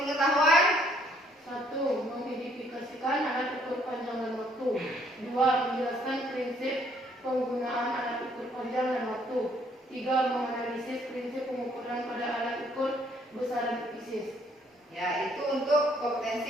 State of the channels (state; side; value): normal; both; correlation 0.65